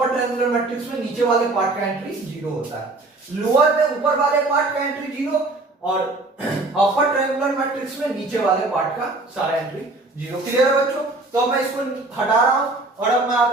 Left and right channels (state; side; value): quieter; left; 3.0 dB